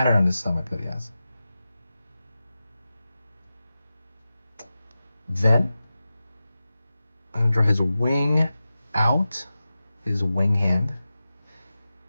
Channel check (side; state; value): both; inverted; correlation -0.94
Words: on his stomach that he has. Then I'm going to draw his wing out, his wing hand.